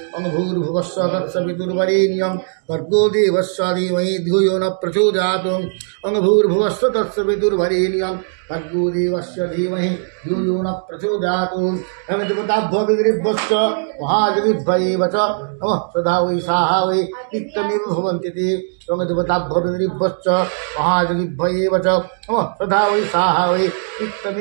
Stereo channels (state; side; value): silent; left; digital silence